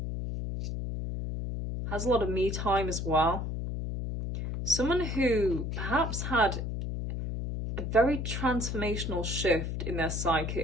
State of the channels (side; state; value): left; noise; hum, 3 dB below the sound